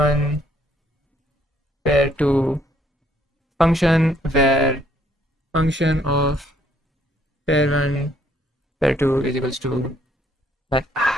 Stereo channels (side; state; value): both; normal; correlation 0.66